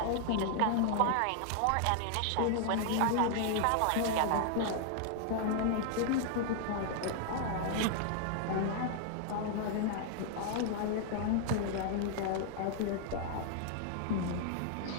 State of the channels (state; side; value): different; both; correlation 0.00